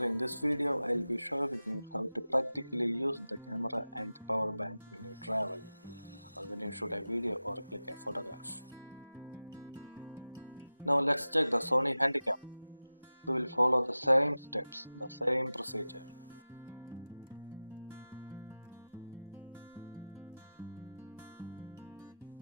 in this video I'll be showing you how to practically use the camera and power bank when you travel or when you shoot a video or click a photograph. Now let's check the Sony Handycam. We will follow the same steps, the same procedure.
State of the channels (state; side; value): inverted; both; correlation -0.95